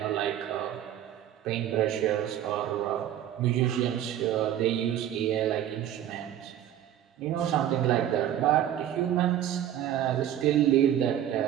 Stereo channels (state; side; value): quieter; left; 11.1 dB